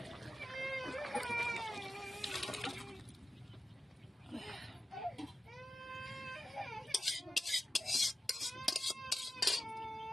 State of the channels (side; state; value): both; normal; correlation 0.93